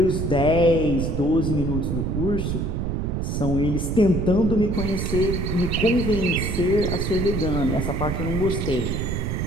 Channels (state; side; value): noise; right; rumble, 1 dB below the sound